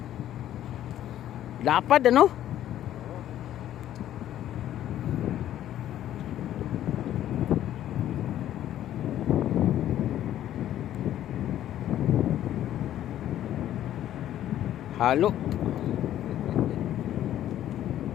Lapad ano? Halo.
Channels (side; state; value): right; quieter; 12.0 dB